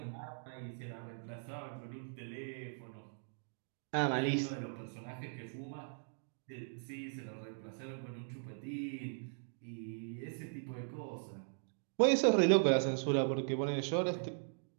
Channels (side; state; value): left; silent; digital silence